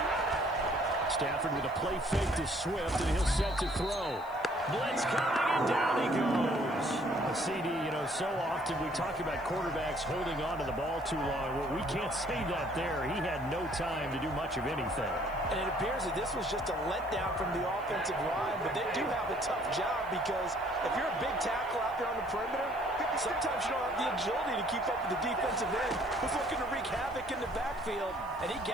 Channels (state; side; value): noise; left; hiss, 27 dB below the sound